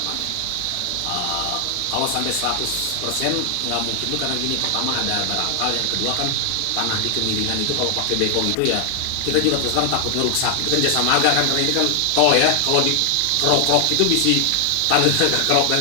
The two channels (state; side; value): different; both; correlation 0.00